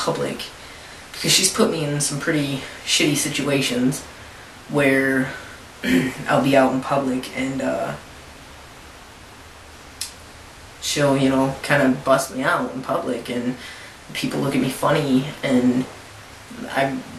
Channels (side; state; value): both; identical; correlation 1.00